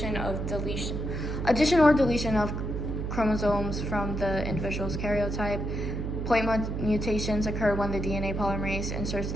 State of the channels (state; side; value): noise; right; hum, 3 dB below the sound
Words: of deletion Addition or deletion of chromosomes from the individual's karyotype. Point mutations occur when the DNA polymerase inserts